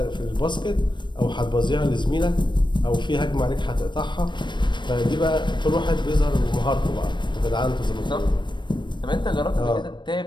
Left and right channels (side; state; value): right; late; 0.22 ms